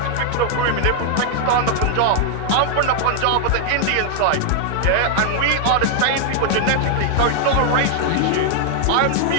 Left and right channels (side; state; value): both; different; correlation 0.00